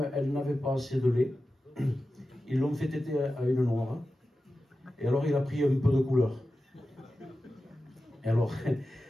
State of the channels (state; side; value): normal; both; correlation 0.93